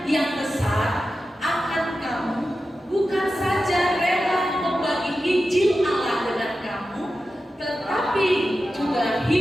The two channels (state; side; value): normal; both; correlation 0.92